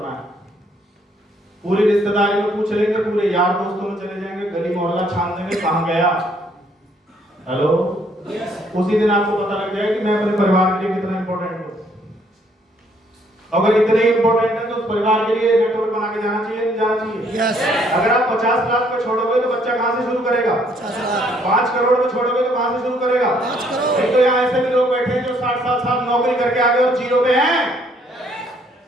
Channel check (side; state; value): both; normal; correlation 0.66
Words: है। पूरी रिश्तेदारी में पूछ लेंगे, पूरे यार दोस्तों में चले जाएंगे, गली मोहल्ला छान देंगे कहां गया। हेलो। उसी दिन आपको पता लग जाएगा कि मैं अपने परिवार के लिए कितना इंपॉर्टेंट हूं। अगर इतने इंपॉर्टेंट है तो उस परिवार के लिए नेटवर्क बना के जाना चाहिए, नहीं जाना चाहिए? yes. अगर आप 50 लाख पे छोड़ोगे तो बच्चा कहां से शुरू करेगा? 5 करोड़ में छोड़ोगे तो कहां से शुरू करेगा? 5 करोड़। नहीं तो यहाँ ऐसे भी लोग बैठे हैं जो 60 साल नौकरी करके आ गए और 0 पे हैं।